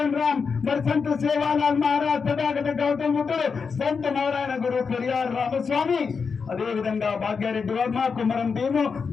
राम, మరి సంత సేవాలాల్ మహారాజ్, తథాగత గౌతమ బుద్ధుడు, సంత నారాయణ గురు పెరియార్ రామస్వామి, అదే విధంగా భాగ్యారెడ్డి వర్మ, కుమరం భీము,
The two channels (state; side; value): quieter; right; 5.5 dB